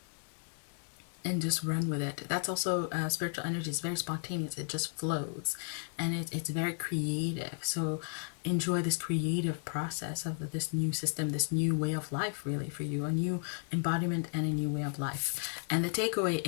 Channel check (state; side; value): silent; right; digital silence